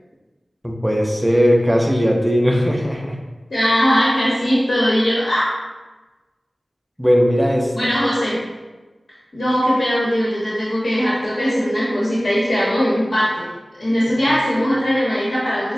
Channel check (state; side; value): normal; both; correlation 0.97